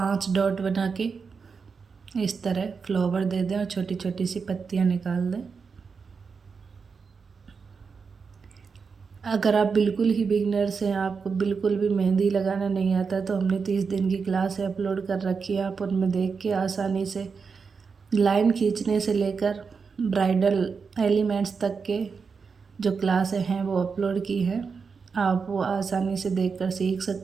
डॉट बना के इस तरह फ्लावर दे दें और छोटी छोटी सी पत्तियां निकाल दें। अगर आप बिल्कुल ही बिगिनर्स हैं, आपको बिल्कुल भी मेहंदी लगाना नहीं आता, तो हमने 30 दिन की क्लास अपलोड कर रखी है। आप उनमें देख के आसानी से लाइन खींचने से लेकर ब्राइडल एलिमेंट्स तक के जो क्लासें हैं वो अपलोड की है। आप वो आसानी से देखकर सीख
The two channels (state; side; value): quieter; left; 5.4 dB